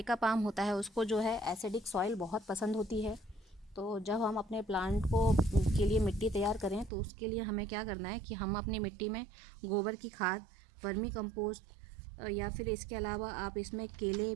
पाम होता है उसको जो है एसिडिक सॉइल बहुत पसंद होती है। तो जब हम अपने प्लांट को के लिए मिट्टी तैयार करें तो उसके लिए हमें क्या करना है कि हम अपनी मिट्टी में गोबर की खाद, वर्मी कंपोस्ट, या फिर इसके अलावा आप इसमें केले,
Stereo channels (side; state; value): left; drops out; at 6.9 s